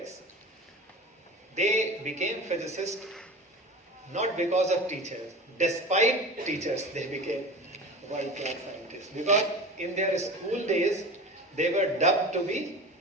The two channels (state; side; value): normal; both; correlation 0.34